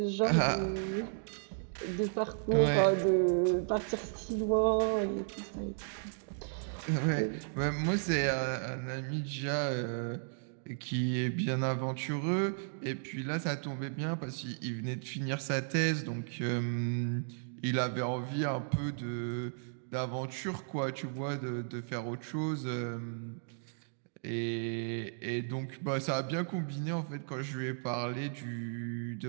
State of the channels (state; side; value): silent; left; digital silence